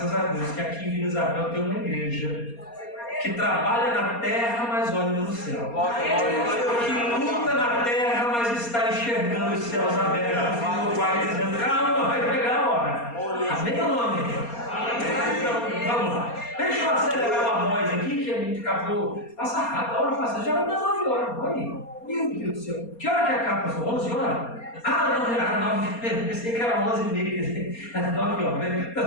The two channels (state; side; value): late; right; 4.3 ms